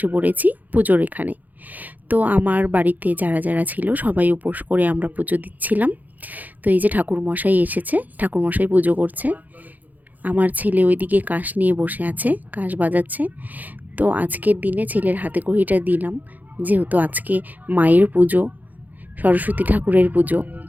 পড়েছি পুজোর এখানে। তো আমার বাড়িতে যারা যারা ছিল সবাই উপোস করে আমরা পুজো দিচ্ছিলাম। তো এই যে ঠাকুরমশাই এসেছে, ঠাকুরমশাই পুজো করছে। আমার ছেলে ওইদিকে কাশ নিয়ে বসে আছে, কাশ বাজাচ্ছে। তো আজকের দিনে ছেলের হাতে খড়িটা দিলাম, যেহেতু আজকে মায়ের পুজো, সরস্বতী ঠাকুরের পুজো,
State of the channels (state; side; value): late; left; 0.082 ms